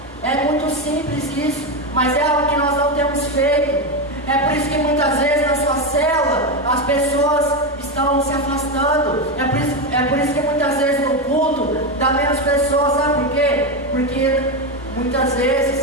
É muito simples isso, mas é algo que nós não temos feito. É por isso que muitas vezes na sua célula as pessoas estão se afastando. É por isso que muitas vezes no culto dá menos pessoas. Sabe por quê? Porque muitas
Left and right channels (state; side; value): noise; right; hum, 26 dB below the sound